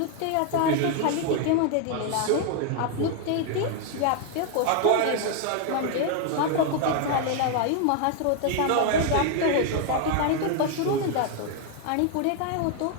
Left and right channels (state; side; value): different; both; correlation 0.00